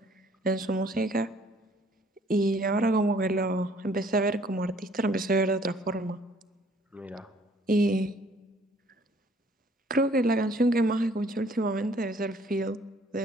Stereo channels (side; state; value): both; normal; correlation 0.59